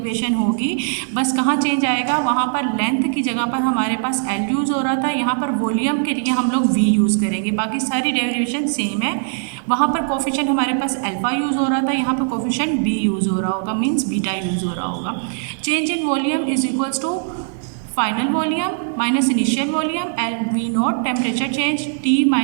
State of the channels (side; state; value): left; silent; 66 dB below the other